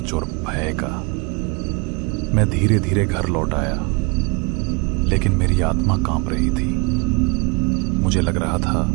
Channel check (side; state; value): left; quieter; 28.6 dB